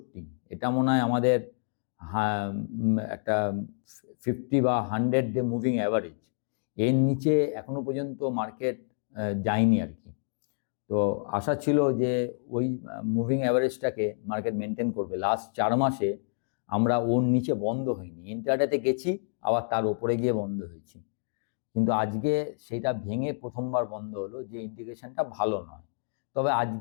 এটা মনে হয় আমাদের একটা 50 বা 100 ডে মুভিং অ্যাভারেজ। এর নিচে এখনও পর্যন্ত মার্কেট যায়নি আর কি। তো আশা ছিল যে ওই মুভিং অ্যাভারেজটাকে মার্কেট মেনটেন করবে। লাস্ট 4 মাসে আমরা ওর নিচে বন্ধ হইনি, ইন্টারডেতে গেছি আবার তার ওপরে গিয়ে বন্ধ হয়েছি, কিন্তু আজকে সেইটা ভেঙে প্রথমবার বন্ধ হলো, যে ইন্ডিকেশনটা ভালো নয়। তবে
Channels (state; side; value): silent; right; digital silence